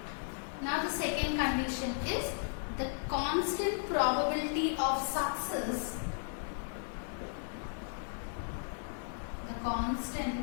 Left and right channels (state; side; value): silent; right; digital silence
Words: condition is the constant probability of success. The